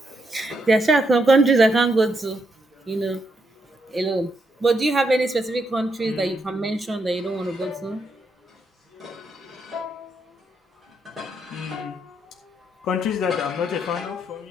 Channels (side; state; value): both; normal; correlation 0.78